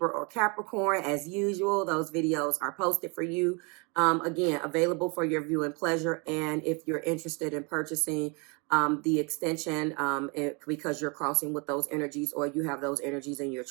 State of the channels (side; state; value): left; quieter; 31.8 dB